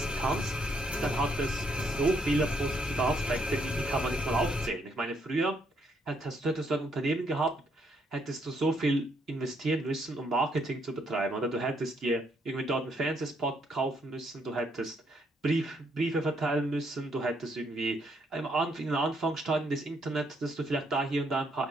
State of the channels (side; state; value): both; normal; correlation 0.72